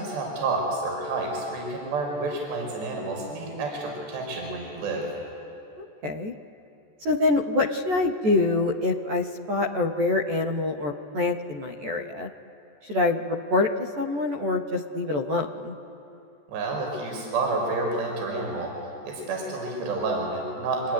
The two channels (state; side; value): late; left; 14 ms